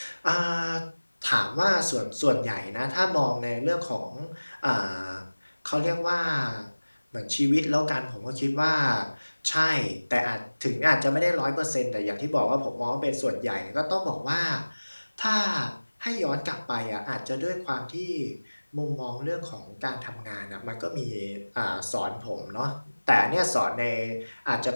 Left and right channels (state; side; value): inverted; both; correlation -1.00